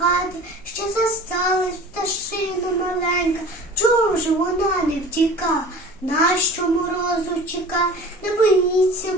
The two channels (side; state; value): both; normal; correlation 0.41